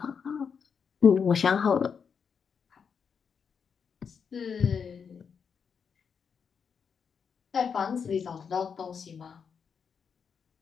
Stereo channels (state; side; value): quieter; right; 6.5 dB